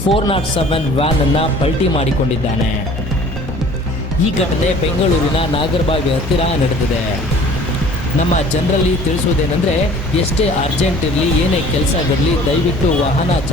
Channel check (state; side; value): normal; both; correlation 0.49